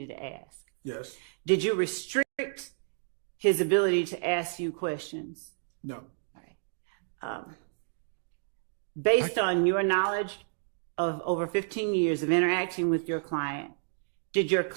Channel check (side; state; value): left; silent; digital silence